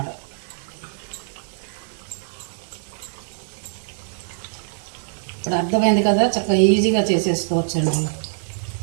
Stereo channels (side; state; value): left; silent; digital silence